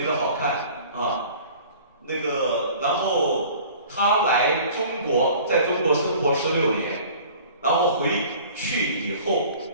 的好看然后他来中国，在中国生活16年，然后回去以后，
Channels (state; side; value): inverted; both; correlation -0.47